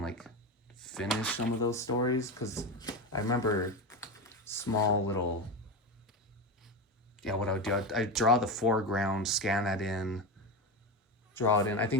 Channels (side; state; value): both; normal; correlation 0.19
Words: like finish some of those stories, because I remember small little, yeah, what I would do, I'd draw the foreground, scan that in, draw it in. I